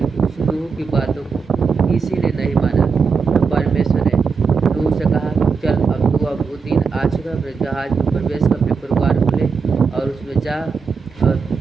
उस नूह की बातों को किसी ने नहीं माना। तो परमेश्वर ने नूह से कहा चल अब वो दिन आ चुका, अपने जहाज में प्रवेश कर अपने परिवार को ले और उसमें जा। और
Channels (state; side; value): quieter; left; 5.4 dB